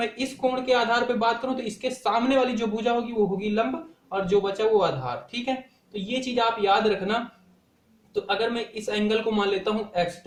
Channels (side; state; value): both; identical; correlation 1.00